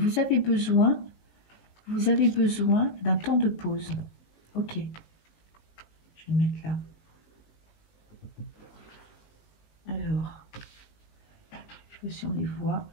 avez besoin d'un temps de pause. Ok. Je vais le mettre là. Alors, je sais pas si on les voit.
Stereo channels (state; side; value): late; right; 18 ms